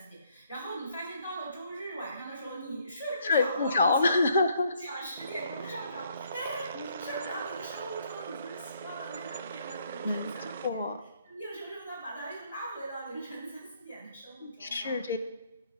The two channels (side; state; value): both; inverted; correlation -0.68